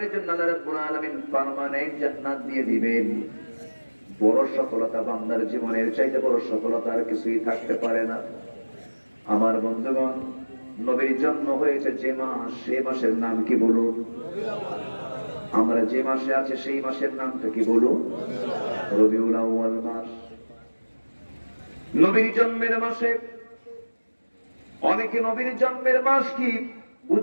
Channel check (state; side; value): inverted; both; correlation -1.00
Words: জন্য আল্লাহ রাব্বুল আলামিন পার্মানেন্ট জান্নাত দিয়ে দিবেন। বড় সফলতা বান্দার জীবনের চাইতে বড় সফলতা আর কিছুই থাকতে পারে না। আমার বন্ধুগণ, নবীর জন্ম হয়েছে যে মাস, সেই মাসের নাম কি বলুন? আমরা যে মাসে আছে সেই মাসের নামটা কি বলুন? রবিউল আউয়াল মাস। নবীর জন্মের মাসে অনেকে নবীর জন্মের মাস কি